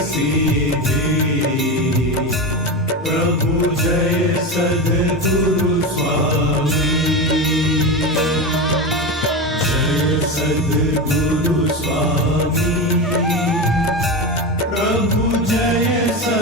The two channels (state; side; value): normal; both; correlation 0.19